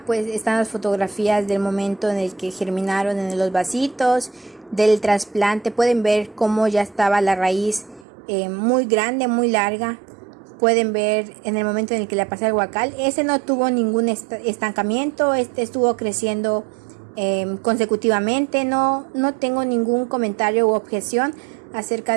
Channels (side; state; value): left; drops out; at 8.1 s